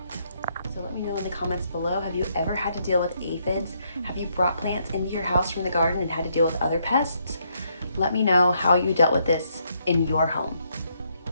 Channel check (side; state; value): both; inverted; correlation -0.74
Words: So let me know in the comments below, have you ever had to deal with aphids? Have you brought plants into your house from the garden and had to deal with other pests? Let me know how you dealt with this in your home.